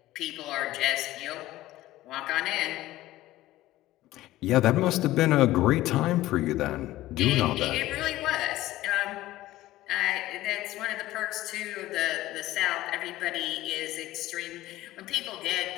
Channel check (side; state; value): right; quieter; 16.1 dB